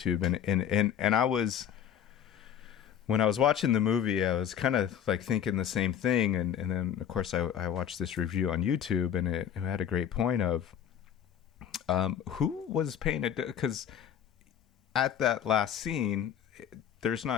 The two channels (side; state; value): right; quieter; 9.1 dB